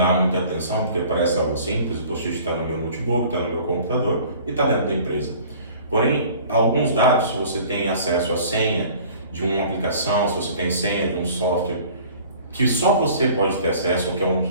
muita atenção porque parece algo simples. O post-it está no meu notebook, está no meu computador e está dentro da empresa. Porém, alguns dados, se você tem acesso à senha de uma aplicação, se você tem senha de um software que só você pode ter acesso, que é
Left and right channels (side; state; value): both; inverted; correlation -0.48